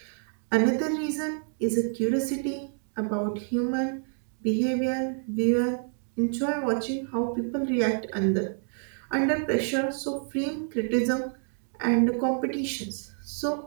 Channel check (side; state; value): left; silent; 57 dB below the other